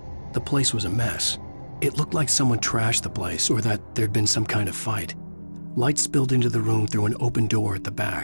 The place was a mess. It looked like someone trashed the place or that there'd been some kind of fight. Light spilled into the room through an open door at the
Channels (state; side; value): inverted; both; correlation -1.00